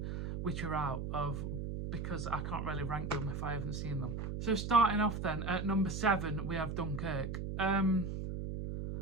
which are out of, because I can't really rank them if I haven't seen them. So starting off then, at number 7, we have Dunkirk. I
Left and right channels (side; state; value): right; noise; hum, 4 dB below the sound